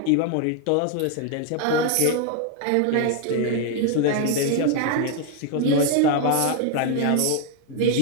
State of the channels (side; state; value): both; different; correlation 0.00